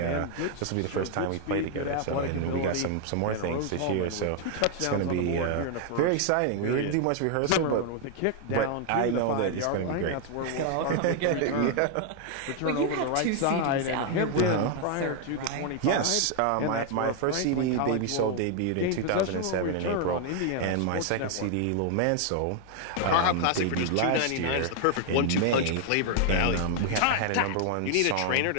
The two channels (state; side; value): different; both; correlation 0.00